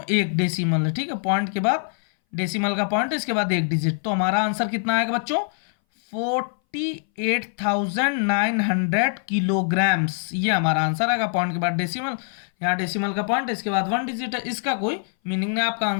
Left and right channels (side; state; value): right; silent; 60 dB below the other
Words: एक डेसिमल है, ठीक है, पॉइंट के बाद डेसिमल का पॉइंट, इसके बाद एक डिजिट। तो हमारा आंसर कितना आएगा बच्चों, 48,900 किलोग्राम्स, ये हमारा आंसर आएगा। पॉइंट के बाद डेसिमल, यहाँ डेसिमल का पॉइंट, इसके बाद 1 डिजिट है, इसका कोई मीनिंग नहीं, आपका